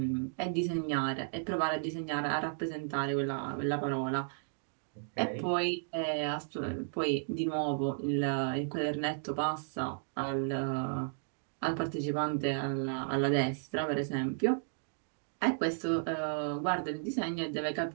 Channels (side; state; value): left; silent; digital silence